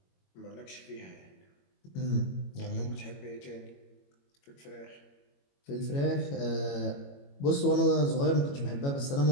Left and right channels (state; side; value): late; right; 21 ms